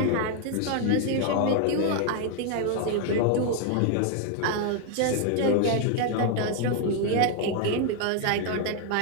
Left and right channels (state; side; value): different; both; correlation 0.00